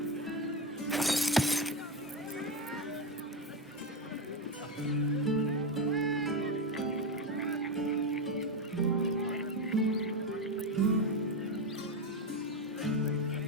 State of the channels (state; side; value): normal; both; correlation 0.12